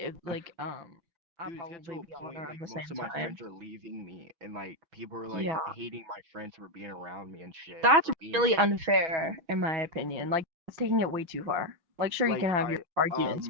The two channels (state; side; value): late; left; 6.2 ms